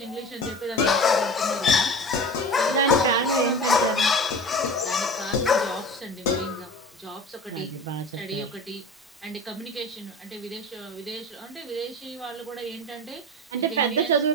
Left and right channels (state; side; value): normal; both; correlation 0.34